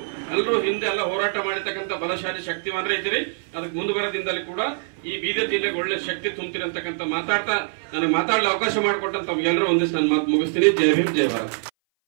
ಹಿಂದೆ ಎಲ್ಲ ಹೋರಾಟ ಮಾಡಿರ್ತಕ್ಕಂಥ ಬಲಶಾಲಿ ಶಕ್ತಿವಾನ್ರೆ ಇದ್ದೀರಿ. ಅದಕ್ಕೆ ಮುಂದೆ ಬರೋದಿಂದಲೇ ಕೂಡ ಈ ಬೀದರ್ ಜಿಲ್ಲೆಗೆ ಒಳ್ಳೆ ಶಕ್ತಿ ತುಂಬ್ತೀರಿ ಅಂತಕ್ಕಂಥ ಮಾತಾಡ್ತಾ ನನಗೆ ಮಾತಾಡಲು ಅವಕಾಶ ಮಾಡಿಕೊಟ್ಟಂತ ತಮ್ಗೆಲ್ಲರೂ ಒಂದಿಷ್ಟು ನಾನು ಮಾತು ಮುಗಿಸ್ತೀನಿ. ಜೈ ಭೀಮ್, ಜೈ ಭಾರತ್.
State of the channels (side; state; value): left; silent; 59 dB below the other